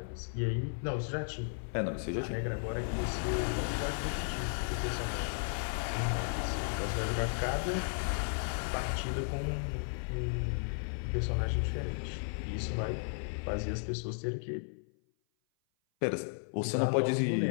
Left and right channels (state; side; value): silent; right; 55 dB below the other